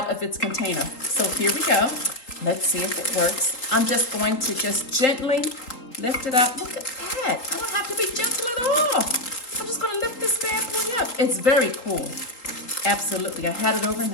of its container. So here we go. Let's see if it works. I'm just going to gently lift it up. Look at that. I don't have to be gentle at all. I'm just gonna lift this bad boy up. It's very cool. Absolutely. I had it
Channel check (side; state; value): right; late; 4.0 ms